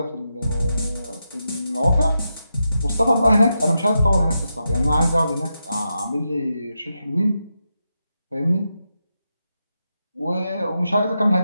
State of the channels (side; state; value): both; inverted; correlation -0.87